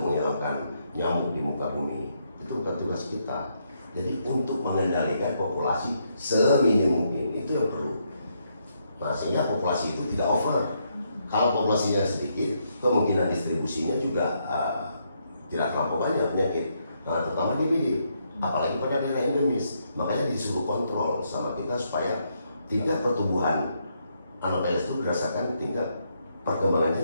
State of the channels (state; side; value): inverted; both; correlation -0.77